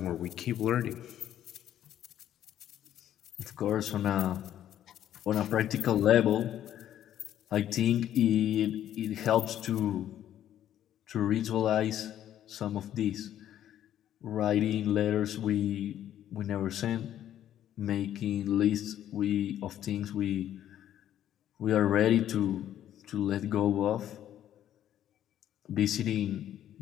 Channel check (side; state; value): right; quieter; 11.3 dB